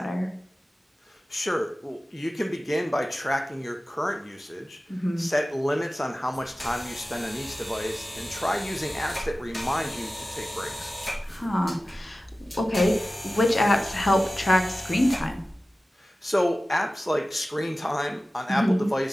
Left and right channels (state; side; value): normal; both; correlation 0.96